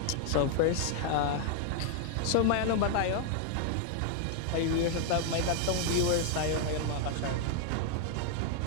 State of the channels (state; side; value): different; both; correlation 0.00